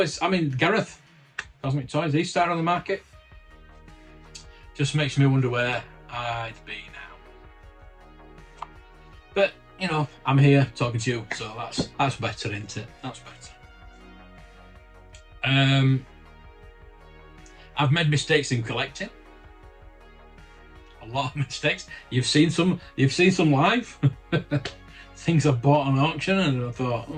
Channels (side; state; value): both; identical; correlation 1.00